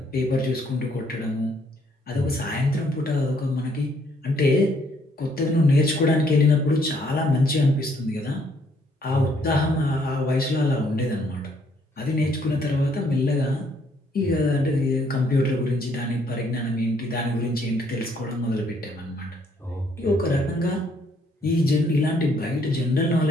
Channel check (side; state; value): both; normal; correlation 0.67